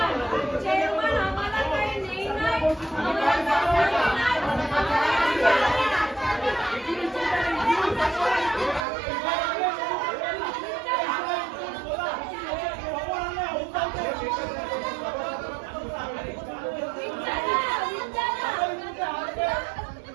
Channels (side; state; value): left; drops out; at 8.8 s